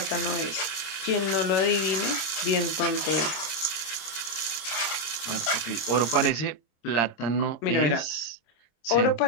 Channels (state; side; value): late; right; 26 ms